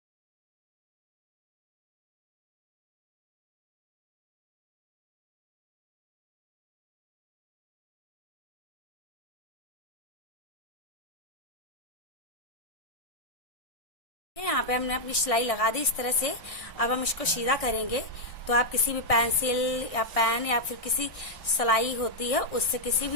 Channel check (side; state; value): right; late; 1.6 ms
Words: यहाँ पे हमने अपनी सिलाई लगा दी इस तरह से। अब हम इसको सीधा करेंगे। तो आप किसी भी पेंसिल या पेन या फिर किसी सिलाई होती है उससे, किसी